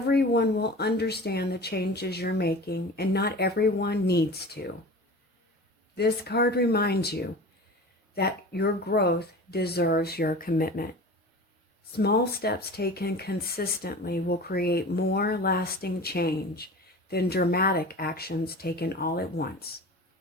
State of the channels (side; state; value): both; normal; correlation 0.36